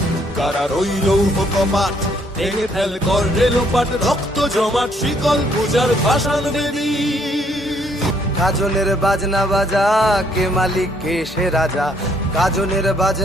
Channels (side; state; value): both; normal; correlation 0.67